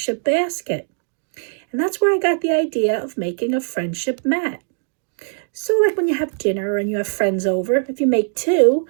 basket. And that's where I got the idea of making a friendship mat. So like when you have dinner and you have friends over, if you make two,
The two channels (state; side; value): silent; left; digital silence